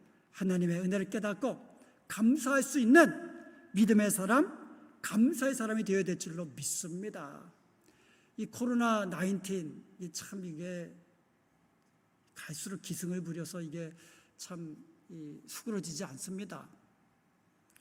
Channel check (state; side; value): identical; both; correlation 1.00